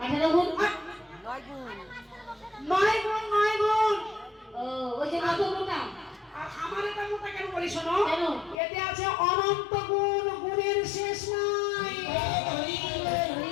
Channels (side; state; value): right; drops out; at 8.6 s